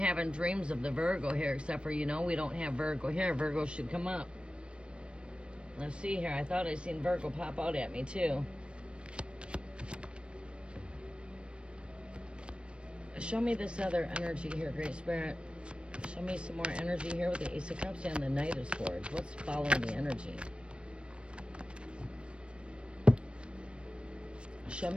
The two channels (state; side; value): late; left; 0.058 ms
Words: dreams of the Virgo here, except for, we don't have Virgo here. Virgo should come up. Let's see here. I thought I seen Virgo pop out at me too. Show me this other energy here, Great Spirit. Show me some more energy here with the Ace of Cups and the Knight of Swords. What's following the energy? Show